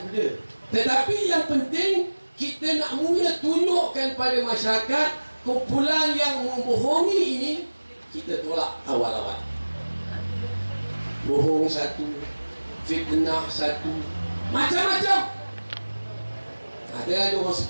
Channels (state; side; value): inverted; both; correlation -1.00